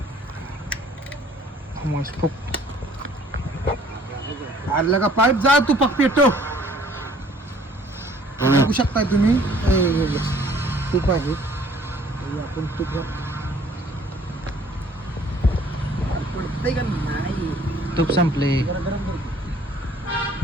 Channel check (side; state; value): both; normal; correlation 0.57